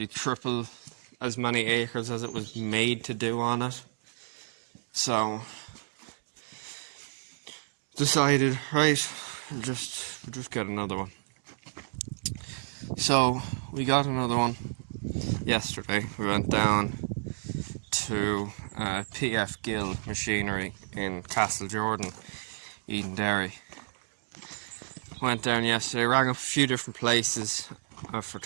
triple as many acres as it was made to do on it. So decided, right, we'll just get another one. So we got another one yesterday. We went down to PF Gill Machinery in Castle Jordan, Eden Derry. Went down yesterday, rang up a few different places for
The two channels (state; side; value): silent; left; digital silence